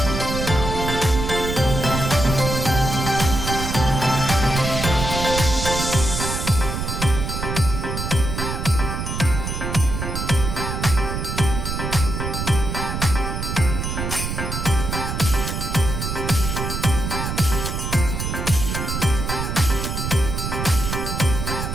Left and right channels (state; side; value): noise; right; rumble, 3 dB below the sound